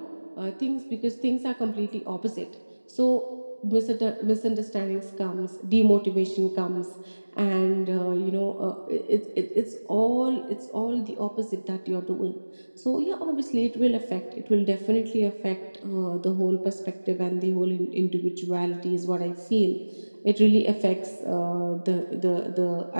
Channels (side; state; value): both; inverted; correlation -1.00